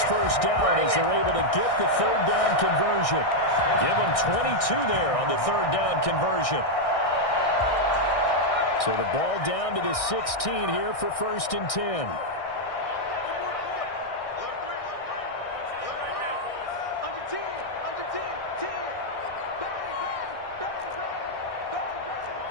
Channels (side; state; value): right; late; 1.6 ms